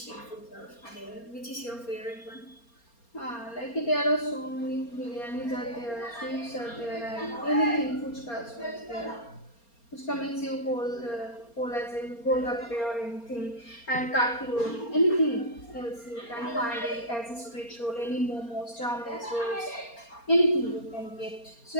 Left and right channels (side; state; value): right; late; 4.3 ms